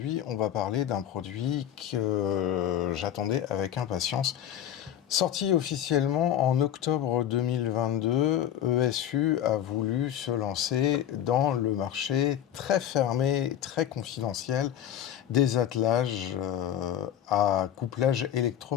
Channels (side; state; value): right; quieter; 10.6 dB